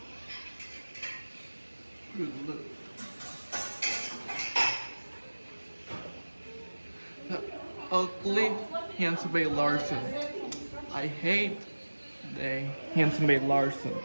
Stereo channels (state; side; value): inverted; both; correlation -1.00